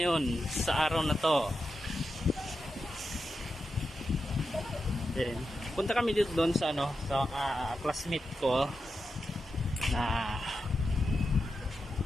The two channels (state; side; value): normal; both; correlation 0.89